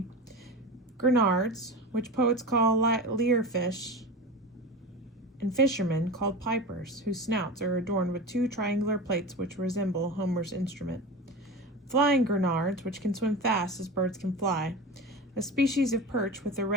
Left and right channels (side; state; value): both; normal; correlation 0.28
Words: grenards, which poets call lyrefish, and fishermen called pipers, whose snouts are adorned with 2 triangular plates which resemble Homer's instrument, flying grenards, which can swim fast as birds can fly, a species of perch with a